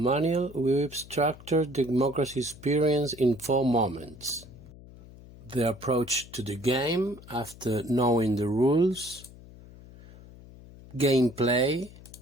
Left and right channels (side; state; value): left; noise; hum, 19 dB below the sound